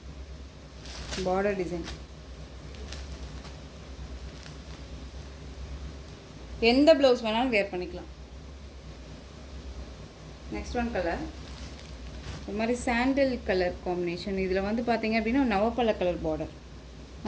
பார்டர் டிசைன் எந்த ப்ளவுஸ் வேணாலும் வேர் பண்ணிக்கலாம். நெக்ஸ்ட் ஒன் கலர் ஒரு மாதிரி சாண்டல் கலர் காம்பினேஷன். இதில் வந்து பார்த்தீங்க அப்படின்னா நவப்பழ கலர் பார்டர்.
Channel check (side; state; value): both; identical; correlation 1.00